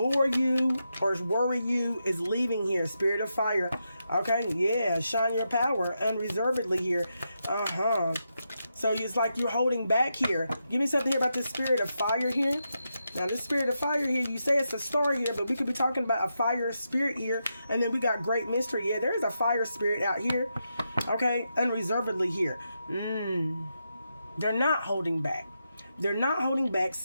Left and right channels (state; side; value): inverted; both; correlation -0.85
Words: you or worry you is leaving here. Spirit of fire. Okay, yeah, shine your power unreservedly here. So it's like you're holding back here. Give me something here about this spirit of fire here. Now this spirit of fire here, you say it's a star here, but we could be talking about a fire spirit here. And then we got great mystery. Yeah, there is a fire spirit out here. Okay, unreservedly here. They're not holding back. They're not holding back.